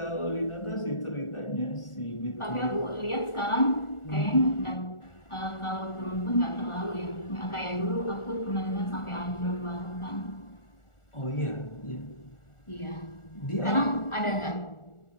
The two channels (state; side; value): late; right; 1.4 ms